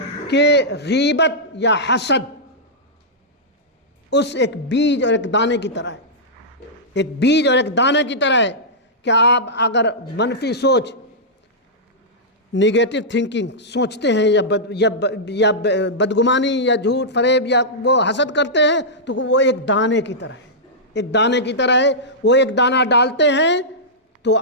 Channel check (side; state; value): both; normal; correlation -0.11